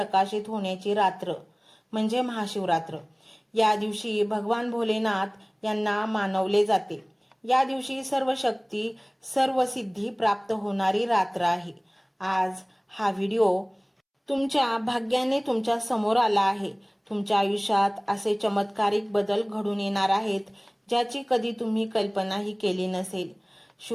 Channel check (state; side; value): identical; both; correlation 1.00